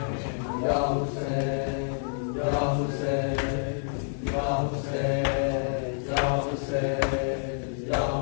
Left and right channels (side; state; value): right; silent; digital silence